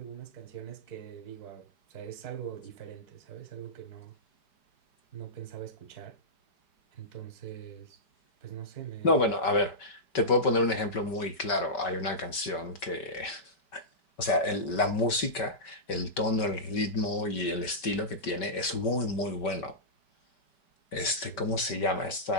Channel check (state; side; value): late; right; 5.2 ms